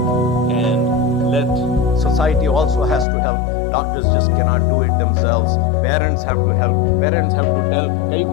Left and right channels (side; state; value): right; drops out; at 3.1 s